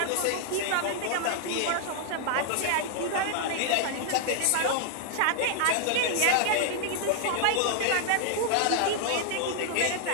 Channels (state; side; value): different; both; correlation -0.01